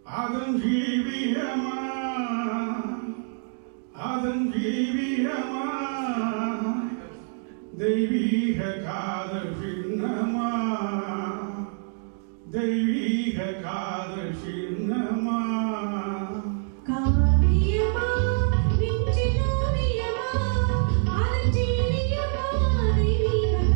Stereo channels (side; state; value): left; silent; digital silence